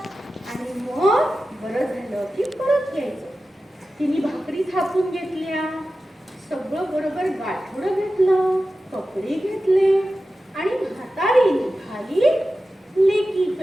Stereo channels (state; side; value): normal; both; correlation 0.93